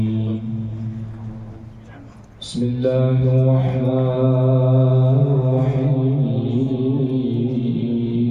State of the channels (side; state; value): both; identical; correlation 1.00